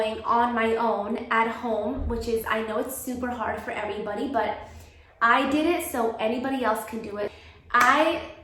on my own at home, which is, I know it's super hard for everybody, but I did it so anybody else can do it.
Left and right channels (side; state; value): both; identical; correlation 1.00